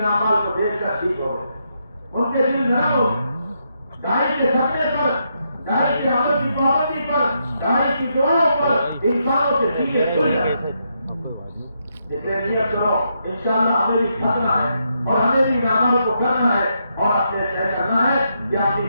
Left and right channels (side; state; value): both; inverted; correlation -0.80